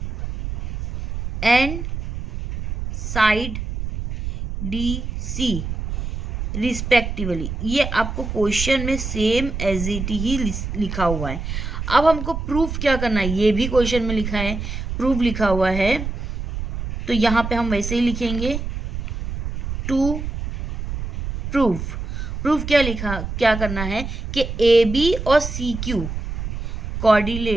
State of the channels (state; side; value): noise; right; rumble, 5 dB below the sound